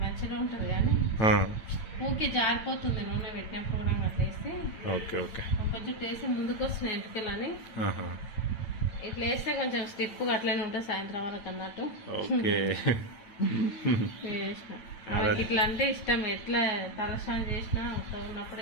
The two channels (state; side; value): late; right; 9.0 ms